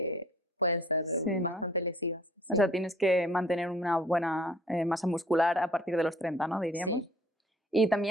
pueden ser Sí, ¿no? bastante lesivas. O sea, tienes que mantener una buena masa muscular a partir de los 30, ¿no? Diríamos. Sí. Y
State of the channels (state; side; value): normal; both; correlation 0.54